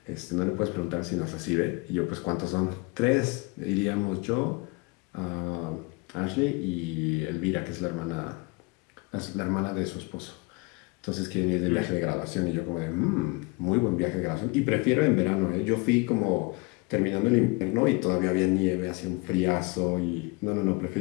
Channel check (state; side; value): quieter; right; 27.0 dB